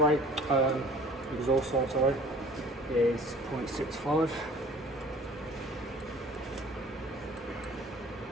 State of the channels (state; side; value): normal; both; correlation 0.47